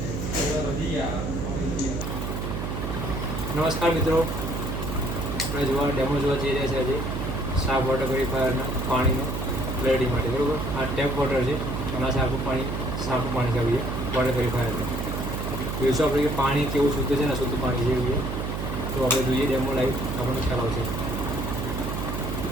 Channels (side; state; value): right; noise; hum, 3 dB below the sound